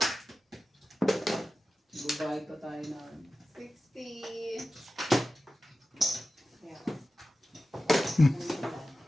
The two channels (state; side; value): normal; both; correlation 0.94